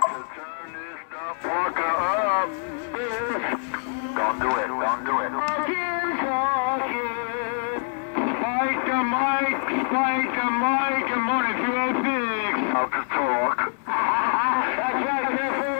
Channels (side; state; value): right; silent; digital silence